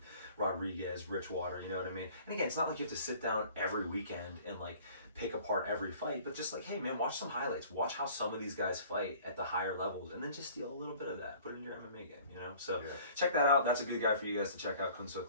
Rodriguez, Richwater. You know what I mean? And again, it's not like you have to sit down every weekend and like pick apart every fight, but just like, hey man, watch some highlights. Watch how some of these guys fight at the higher levels, and then just steal a little bit of that, put it in your MMA game. You know, so check that out. That's a good guy for you guys to check out,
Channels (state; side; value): inverted; both; correlation -0.50